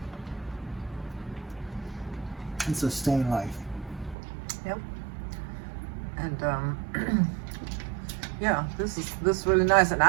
and sustain life. Yep. And yeah, this is really nice. And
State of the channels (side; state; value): left; drops out; at 4.2 s